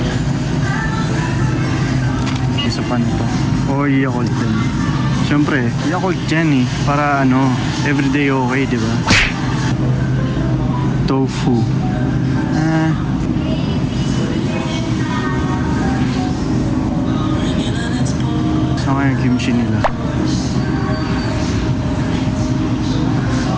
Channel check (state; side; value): identical; both; correlation 1.00